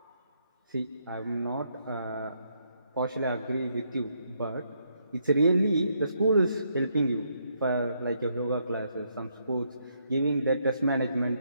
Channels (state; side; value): inverted; both; correlation -0.75